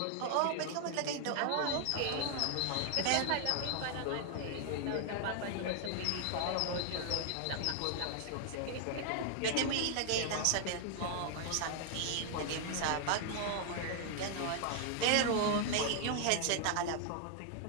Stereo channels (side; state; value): both; different; correlation 0.00